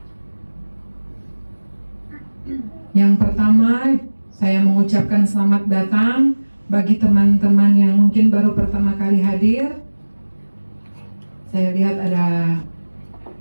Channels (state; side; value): inverted; both; correlation -1.00